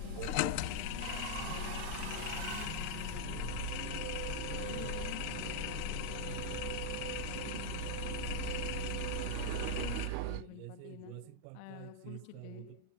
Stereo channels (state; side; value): different; both; correlation 0.00